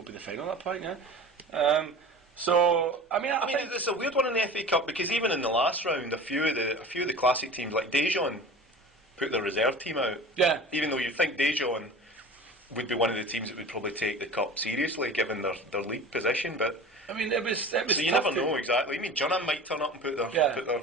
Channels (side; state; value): both; normal; correlation 0.37